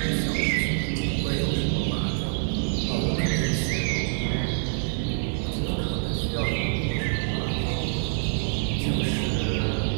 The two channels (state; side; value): silent; left; digital silence